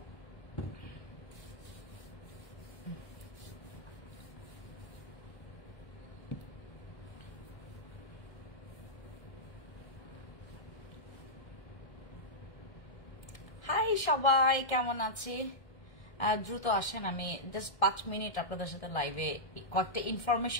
হাই সবাই, কেমন আছে? দ্রুত আসেন, আমি জাস্ট 5 মিনিট আপনাদের সাথে লাইভে কয়েকটা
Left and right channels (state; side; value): late; right; 1.7 ms